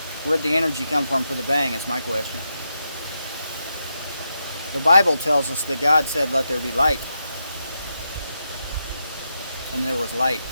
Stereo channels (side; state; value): both; inverted; correlation -0.85